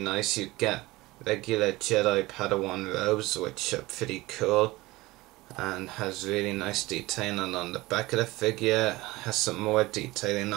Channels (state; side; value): quieter; left; 20.2 dB